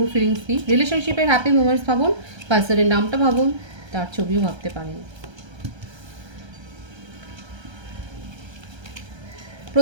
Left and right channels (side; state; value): left; late; 1.3 ms